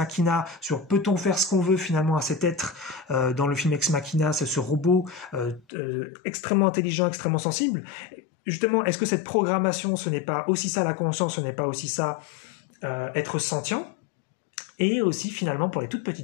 sur peut-on faire ce qu'on veut finalement à cet être. Dans le film Ex Machina, c'est ce robot extrêmement intelligent, extrêmement sensible. Justement, est-ce que cette programmation, ce n'est pas aussi ça la conscience, ce n'est pas aussi ça être sentient? Et aussi finalement pour les toutes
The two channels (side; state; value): right; drops out; at 5.6 s